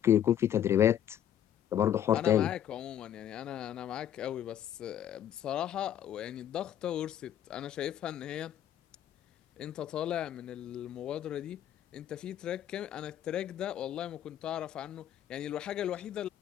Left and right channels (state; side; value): quieter; right; 10.5 dB